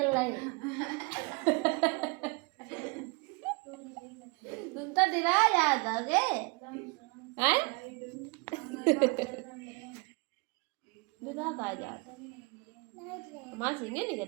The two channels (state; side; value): quieter; left; 29.8 dB